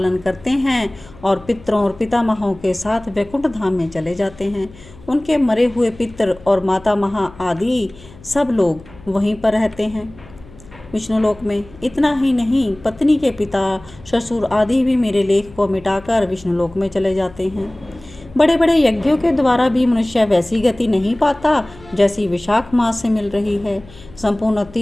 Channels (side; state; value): left; noise; hum, 21 dB below the sound